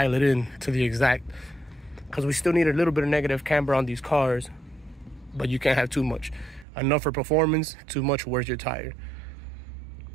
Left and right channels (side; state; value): left; drops out; at 6.7 s